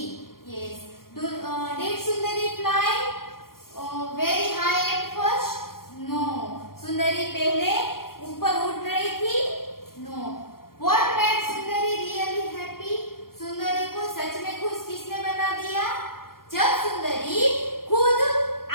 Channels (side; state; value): right; late; 0.92 ms